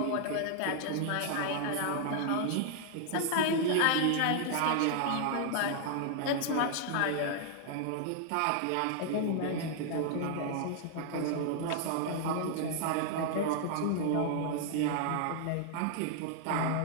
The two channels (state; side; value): different; both; correlation 0.00